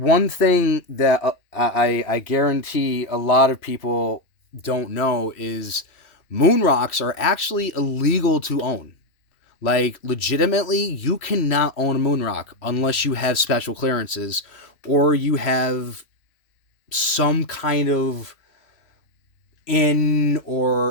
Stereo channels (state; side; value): late; right; 3.0 ms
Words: thing that I guarantee a lot of people don't know is moon rocks are actually illegal to own. Like, legitimately, you cannot own a moon rock unless you have special clearances or you have some kind of in,